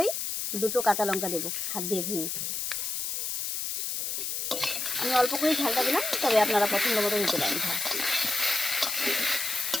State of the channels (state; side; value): noise; left; hiss, 2 dB below the sound